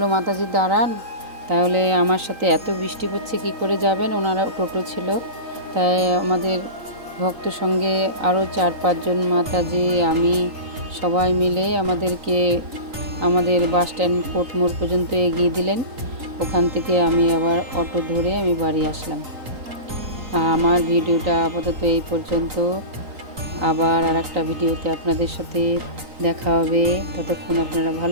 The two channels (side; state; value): left; late; 3.9 ms